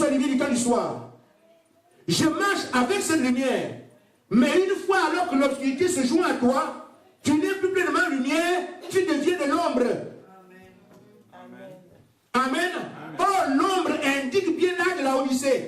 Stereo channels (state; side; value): identical; both; correlation 1.00